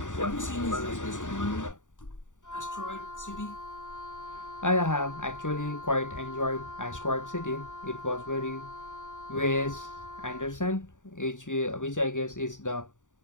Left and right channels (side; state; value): right; late; 0.86 ms